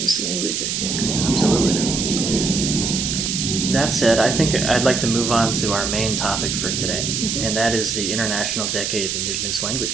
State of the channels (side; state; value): right; noise; hiss, 1 dB below the sound